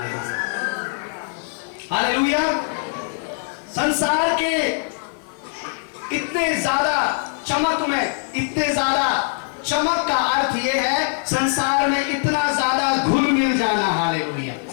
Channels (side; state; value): right; silent; 59 dB below the other